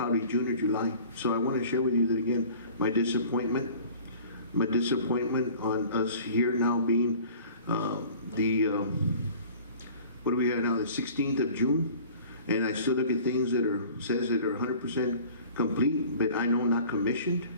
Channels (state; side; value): inverted; both; correlation -0.47